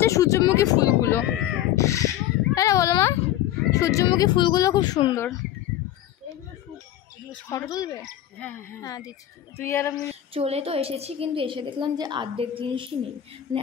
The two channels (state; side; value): quieter; right; 12.3 dB